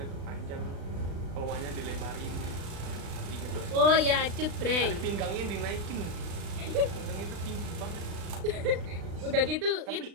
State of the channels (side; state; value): left; late; 36 ms